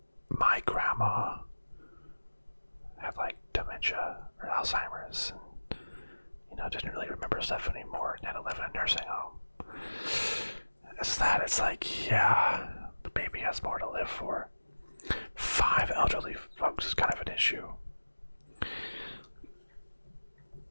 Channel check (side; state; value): both; inverted; correlation -1.00